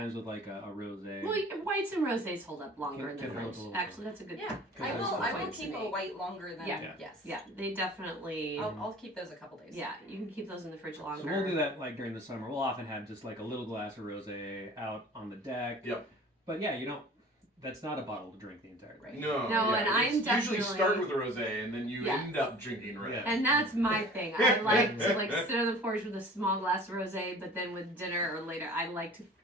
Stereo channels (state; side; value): normal; both; correlation 0.45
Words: with like a rosé. Well, whites and rosés hold up longer in the Can hold fridge. a little Actually, that's a good. Yeah, Because I there's will. the I will points to keep a make. white longer than Yeah. yes. Yeah, they definitely. I'll keep those a couple days. Yeah, you can keep those in the fridge longer. So we'll do that like during the summer. We'll often have just like a little glass of rosé out on the deck. Yep. But yeah, you don't. That's not a bottle to drink the entire day. No, No, and I'm it's usually definitely- start with a rosé and then you Yes. end up drinking red. Yeah. And that's my thing. I like to like sit on the porch with a small glass of rosé, but then with dinner or later, I like